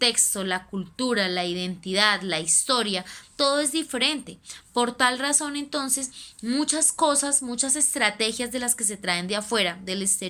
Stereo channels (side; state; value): both; identical; correlation 1.00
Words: la cultura, la identidad, la historia, todo es diferente. Por tal razón, entonces, muchas cosas, muchas estrategias de las que se traen de afuera, del